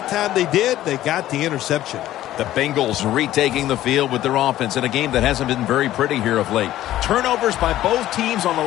time they did, they got the interception. The Bengals retaking the field with their offense in a game that hasn't been very pretty here of late. Turnovers by both teams on the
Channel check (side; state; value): right; quieter; 13.9 dB